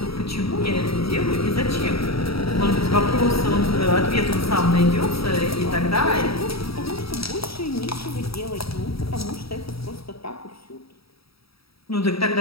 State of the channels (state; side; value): late; right; 0.76 ms